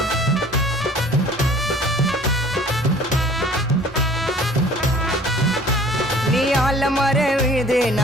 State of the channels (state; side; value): normal; both; correlation 0.50